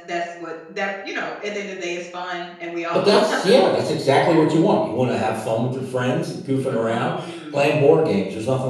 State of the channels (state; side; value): identical; both; correlation 1.00